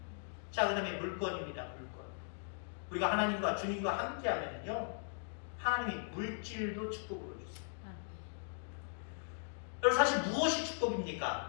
자, 그 다음에 물건입니다. 물건. 우리가 하나님과 주님과 함께하면요, 하나님이 물질도 축복으로 주세요. 그래서 사실 무엇이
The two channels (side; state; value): right; silent; digital silence